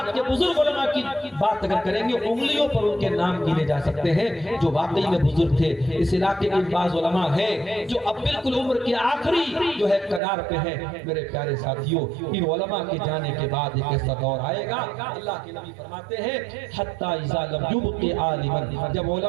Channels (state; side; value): drops out; left; at 10.2 s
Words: کے بزرگ علماء کی بات اگر کریں گے، انگلیوں پر ان کے نام گنے جا سکتے ہیں جو واقعی میں بزرگ تھے۔ اس علاقے کے بعض علماء ہیں جو اب بالکل عمر کے آخری جو ہے کنار پہ ہیں۔ میرے پیارے ساتھیوں، ان علماء کے جانے کے بعد ایک ایسا دور آئے گا، اللہ کے نبی فرماتے ہیں حتی اذا یبقی عالما، جب